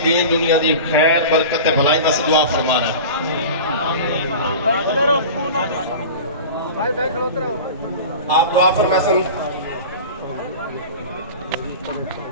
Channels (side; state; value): both; inverted; correlation -0.34